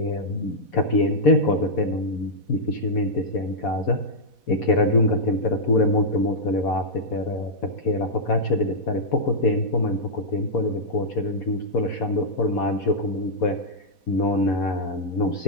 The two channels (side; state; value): right; late; 4.1 ms